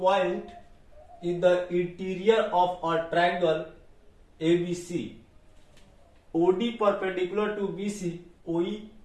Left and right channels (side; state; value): both; identical; correlation 1.00